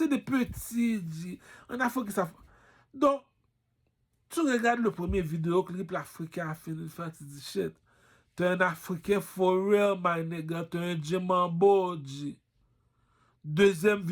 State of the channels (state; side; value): identical; both; correlation 1.00